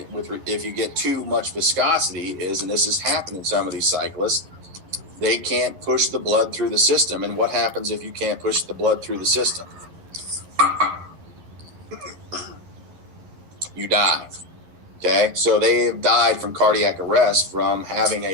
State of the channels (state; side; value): late; left; 11 ms